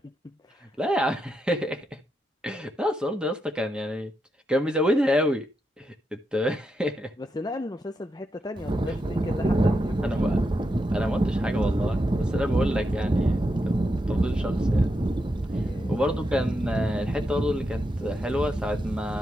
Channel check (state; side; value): normal; both; correlation 0.84